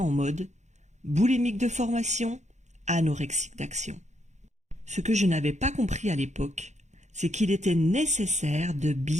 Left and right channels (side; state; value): left; late; 0.34 ms